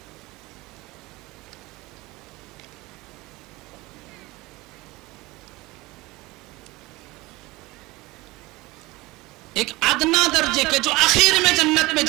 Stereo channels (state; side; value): quieter; left; 21.2 dB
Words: ایک ادنا درجے کے جو آخر میں جنت میں